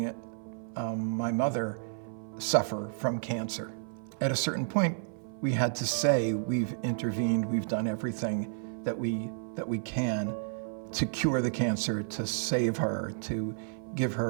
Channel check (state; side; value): silent; left; 57 dB below the other